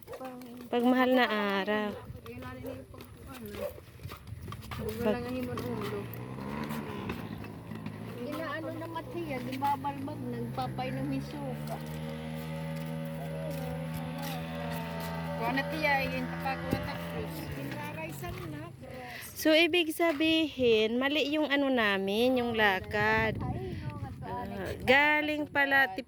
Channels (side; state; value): both; identical; correlation 1.00